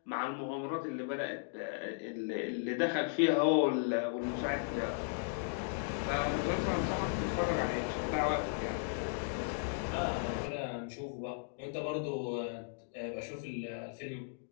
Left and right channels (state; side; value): silent; right; digital silence